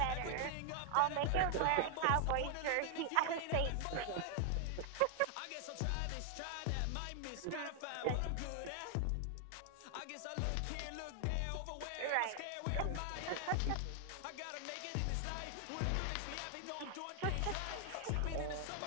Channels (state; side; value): different; both; correlation 0.00